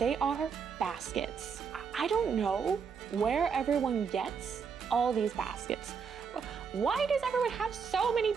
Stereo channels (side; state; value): left; quieter; 6.2 dB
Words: are baskets. I don't know where everyone gets all these baskets. Why does everyone have so many